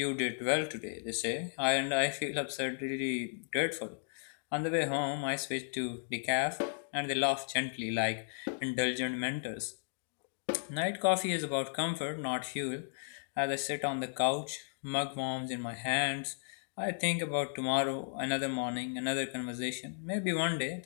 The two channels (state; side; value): silent; right; digital silence